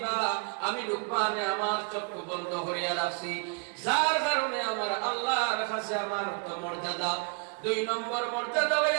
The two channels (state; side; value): quieter; left; 34.6 dB